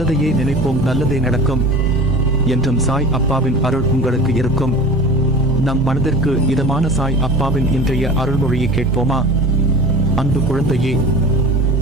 நினைப்போம், நல்லதே நடக்கும் என்றும் சாய் அப்பாவின் அருள் உங்களுக்கு இருக்கும். நம் மனதிற்கு இதமான சாய் அப்பாவின் இன்றைய அருள்மொழியை கேட்போமா? அன்பு குழந்தையே,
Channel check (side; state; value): both; normal; correlation 0.37